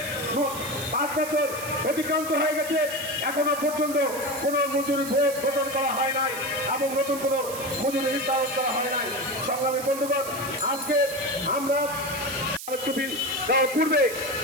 5 বছর অতিক্রান্ত হয়ে গেছে, এখনো পর্যন্ত কোনো মজুরি প্রদান করা হয় নাই এবং নতুন কোনো মজুরি নির্ধারণ করা হয় নাই। সংগ্রামী বন্ধুগণ, আজকে আমরা পূর্বে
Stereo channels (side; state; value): right; noise; hiss, 10 dB below the sound